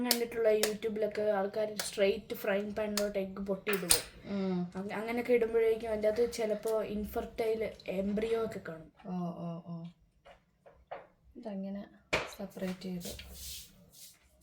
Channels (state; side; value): identical; both; correlation 1.00